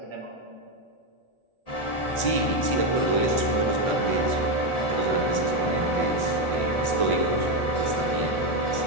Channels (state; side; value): late; right; 1.4 ms